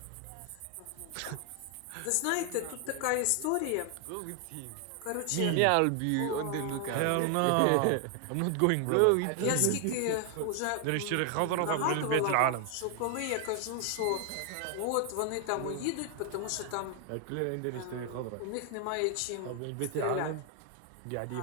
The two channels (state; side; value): different; both; correlation 0.00